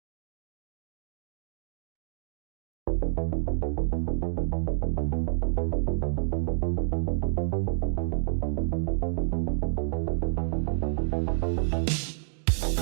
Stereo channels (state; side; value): silent; left; digital silence